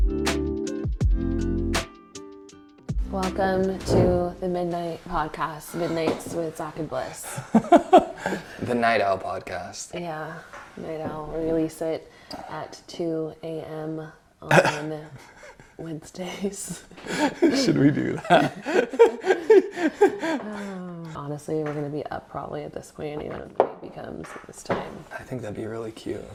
Welcome to the Midnight Podcast, Midnights with Zack and Bliss. The Night Owl Podcast. Yeah, Night Owl. We release it at 2 a.m. on Wednesdays. Should we do that? Honestly, we're going to be up probably at this point, even if it becomes this time. I think that'd be really cute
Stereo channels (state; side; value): identical; both; correlation 1.00